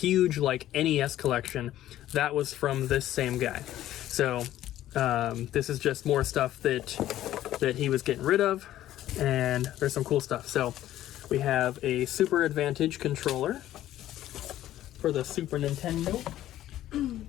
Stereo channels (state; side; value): quieter; right; 13.3 dB